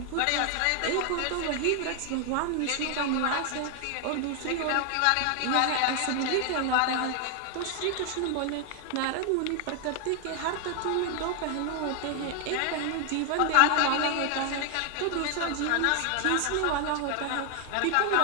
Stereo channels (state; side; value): different; both; correlation 0.00